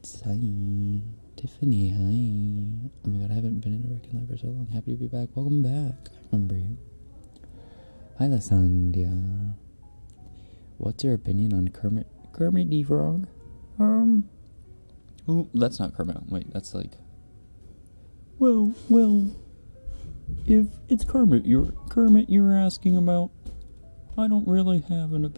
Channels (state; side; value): inverted; both; correlation -1.00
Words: hi. Tiffany, hi. Oh my god, I haven't been in a Rekken live for so long. Happy to be back. Welcome back. I remember you. Hi, Lasandia. What's your opinion on Kermit the Frog? Ooh, that's not Kermit. Wait, that's like... Well, if it's Kermit you're asking about, I don't really have an